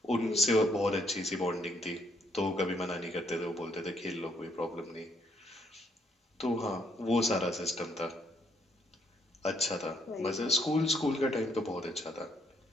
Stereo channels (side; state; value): both; normal; correlation 0.70